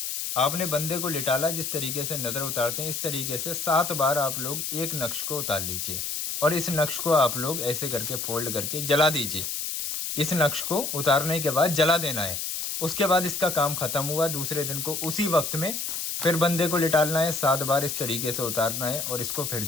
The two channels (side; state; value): left; noise; hiss, 3 dB below the sound